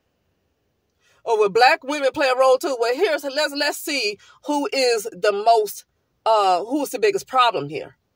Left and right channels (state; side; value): identical; both; correlation 1.00